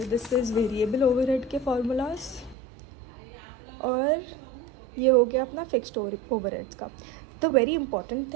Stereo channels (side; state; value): left; drops out; at 2.6 s